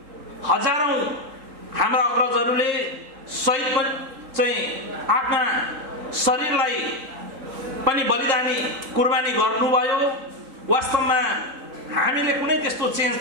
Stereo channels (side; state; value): left; late; 3.7 ms